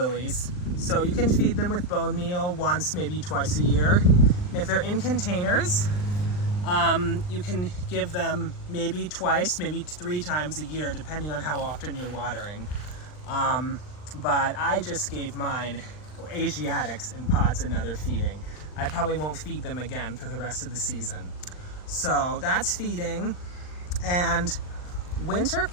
So you can feed them with bone meal once, maybe twice a year. If they're in containers, you can give them maybe twice, maybe 3 times a year, depending on how often you're watering. But I just gave mine, Asiatics, in pots another feeding. I probably won't feed them again for the rest of the season. So that's feeding. And winter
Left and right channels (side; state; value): right; late; 39 ms